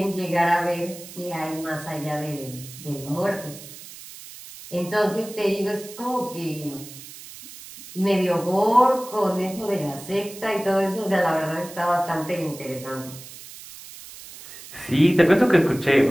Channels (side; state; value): right; noise; hiss, 16 dB below the sound